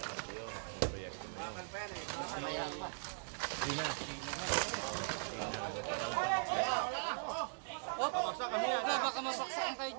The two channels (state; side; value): silent; left; 51 dB below the other